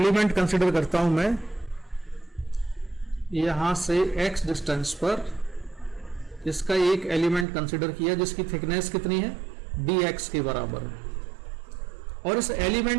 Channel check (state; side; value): drops out; left; at 7.5 s